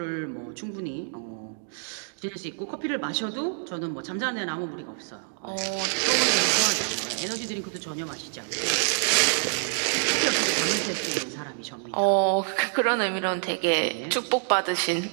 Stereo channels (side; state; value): left; silent; digital silence